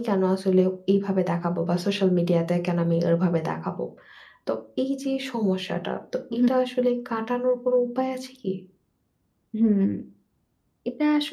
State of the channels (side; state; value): both; identical; correlation 1.00